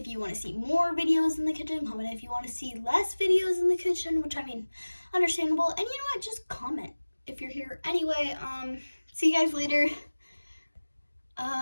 you want to see more videos in the kitchen. Comment if you want to see less videos in the kitchen, which I mean, understandable. And you know what? Just comment if you're here. Anyway, see you guys later.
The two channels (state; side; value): inverted; both; correlation -1.00